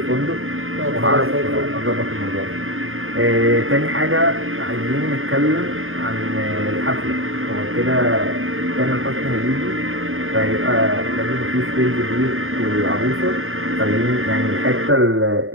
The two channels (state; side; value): late; left; 0.60 ms